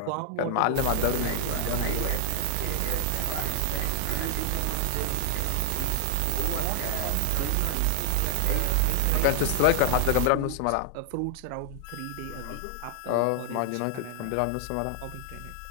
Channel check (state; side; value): different; both; correlation 0.00